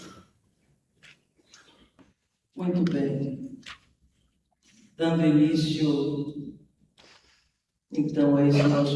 Muito bem. Dando início, então, a esse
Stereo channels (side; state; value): both; identical; correlation 1.00